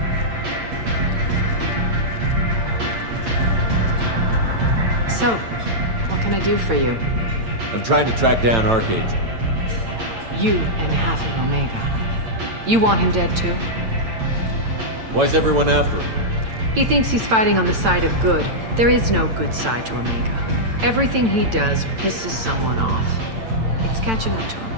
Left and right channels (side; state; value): left; late; 8.9 ms